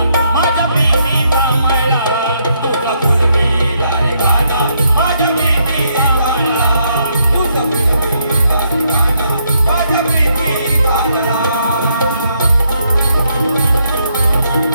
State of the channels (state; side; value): inverted; both; correlation -0.75